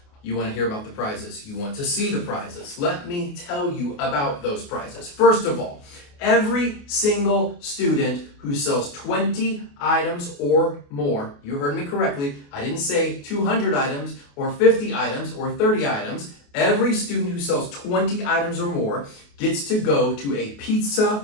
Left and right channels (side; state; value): right; late; 28 ms